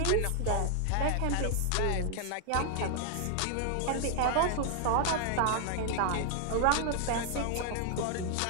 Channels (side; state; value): both; different; correlation 0.00